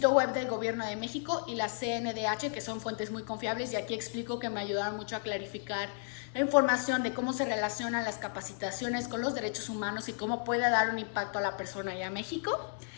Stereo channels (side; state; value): right; silent; digital silence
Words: web del Gobierno de México y la CNDH, que son fuentes muy confiables y aquí explico que me ayudaron mucho a clarificar la información de cómo se relacionan las capacitaciones con los derechos humanos y cómo puede dar un impacto a la persona y a México.